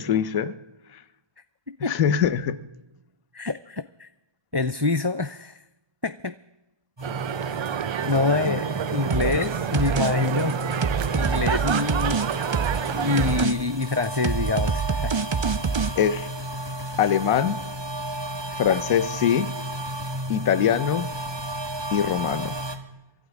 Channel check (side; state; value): left; late; 1.3 ms